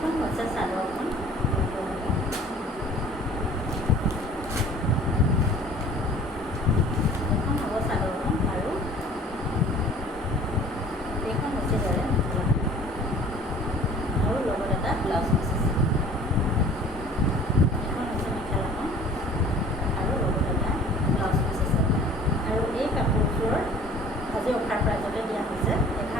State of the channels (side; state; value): both; normal; correlation 0.48